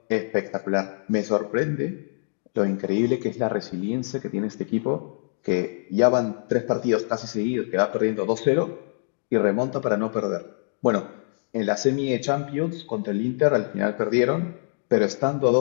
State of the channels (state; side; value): silent; right; digital silence